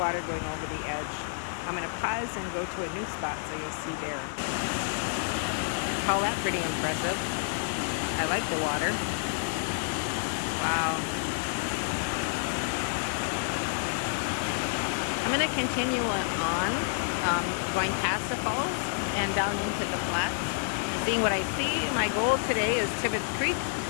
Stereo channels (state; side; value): silent; right; digital silence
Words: going over the edge. I'm going to pause and go to a new spot so you'll see there. Call that pretty impressive. I like the water. Wow. I'm going to continue on, going past the falls and down into the flats, seeing what I see. My goal today is Tibbetts Creek.